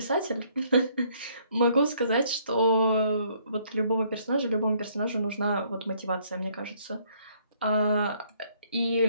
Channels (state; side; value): inverted; both; correlation -0.65